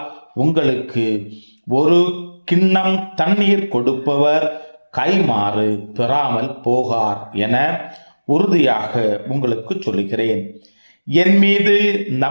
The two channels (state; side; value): inverted; both; correlation -1.00